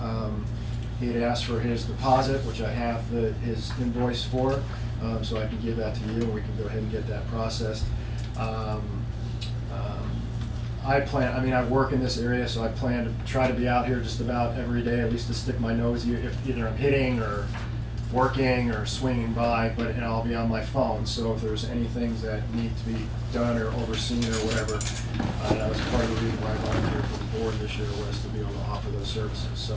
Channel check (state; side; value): identical; both; correlation 1.00